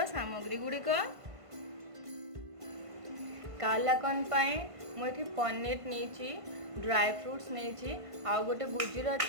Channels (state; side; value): late; left; 1.5 ms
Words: सामग्री गुड़िक। कालाकन पाई मु एठी पनीर नेची, ड्राई फ्रूट्स नेची, आ गोटे